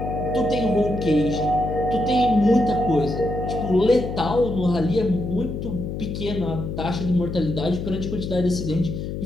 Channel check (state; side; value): noise; left; hum, 5 dB below the sound